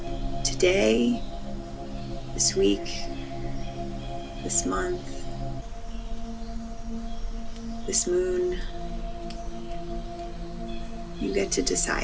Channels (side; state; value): both; identical; correlation 1.00